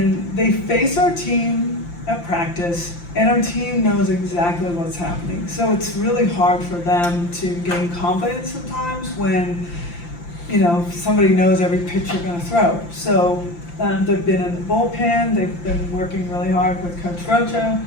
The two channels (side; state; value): right; late; 5.8 ms